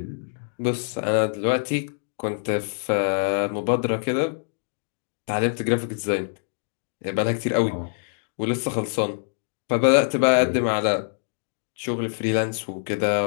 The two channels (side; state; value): right; silent; digital silence